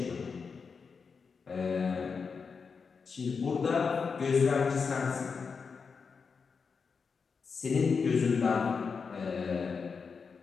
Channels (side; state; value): right; quieter; 5.4 dB